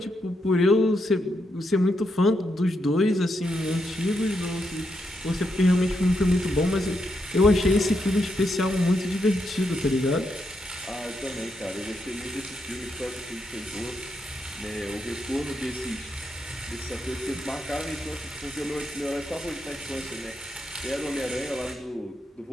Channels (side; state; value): both; normal; correlation 0.81